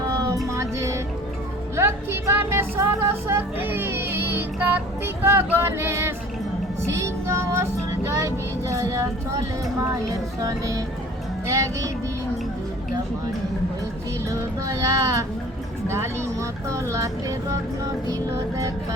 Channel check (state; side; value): normal; both; correlation 0.47